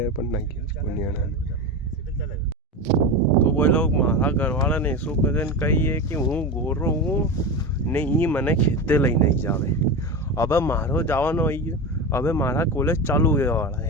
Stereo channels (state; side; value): normal; both; correlation 0.22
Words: पर नहीं आना। तो वो लोग मारा घर वाला ने शू कदन कही है कि हूँ गोरो हूँ नहीं मने खेते लई नहीं जावे। अब मारो जावानो आई अब मारा कॉलेज चालू हुए वाला